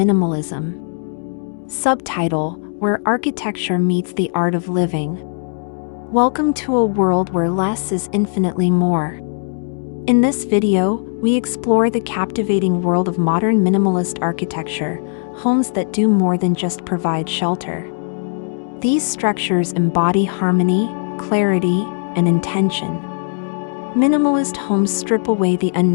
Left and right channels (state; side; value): silent; right; 66 dB below the other